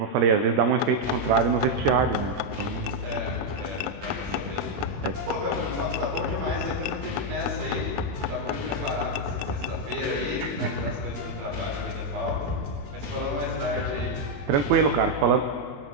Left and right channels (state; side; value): late; left; 21 ms